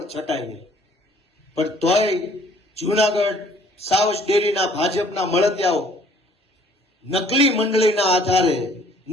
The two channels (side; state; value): both; normal; correlation 0.58